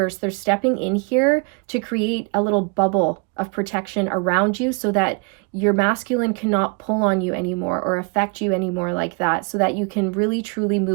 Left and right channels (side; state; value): left; quieter; 31.9 dB